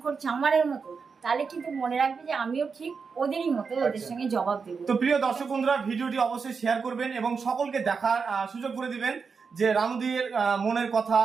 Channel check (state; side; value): quieter; left; 5.4 dB